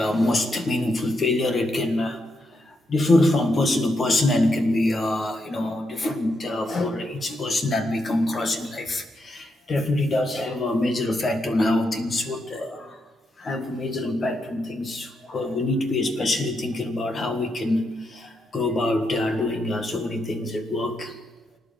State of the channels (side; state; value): both; normal; correlation 0.81